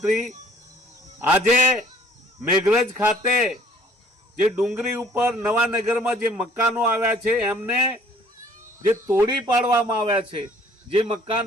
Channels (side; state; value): both; normal; correlation 0.56